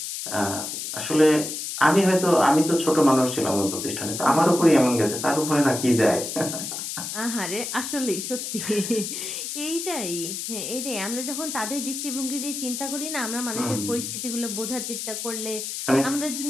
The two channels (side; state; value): left; noise; hiss, 5 dB below the sound